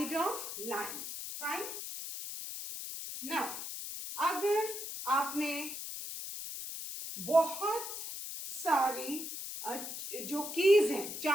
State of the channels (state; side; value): noise; left; hiss, 7 dB below the sound